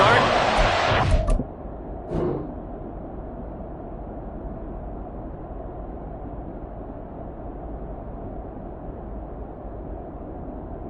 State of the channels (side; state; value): both; identical; correlation 1.00